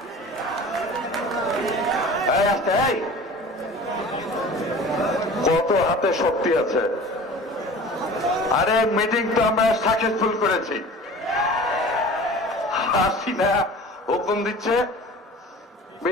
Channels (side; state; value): both; normal; correlation 0.41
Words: কত হাতে শক্তি আছে। আরে মিটিং তো আমরা সাকসেসফুল করেছি। হাসিনা হুকুম দিচ্ছে